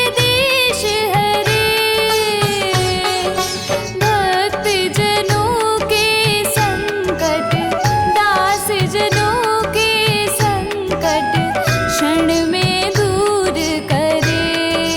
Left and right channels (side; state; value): both; identical; correlation 1.00